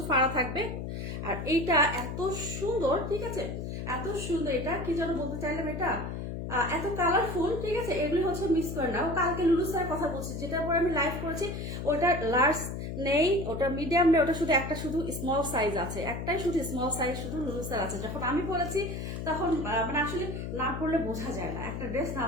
ফাড়া থাকবে, আর এইটা এত সুন্দর, ঠিক আছে? এত সুন্দর, এটা কি যেন বলতে চাইলাম, এটা এত কালারফুল, ঠিক আছে? এগুলি হচ্ছে মিস করে না। ও কালকে লুলু স্যারের কথা বলছি, যেটার পরে আমি লাইভ করেছি, ওটা লার্জ নেই, ওটা মিডিয়াম নেই, ওটা শুধু একটা শুধু স্মল সাইজ আছে, একটাই শুধু স্মল সাইজ শুধু লুলু স্যার আছে। যখন আমি পরেছি তখন মানে আসলে না পড়লে বোঝা যায় না, একটা ড্রেস না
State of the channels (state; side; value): noise; left; hum, 5 dB below the sound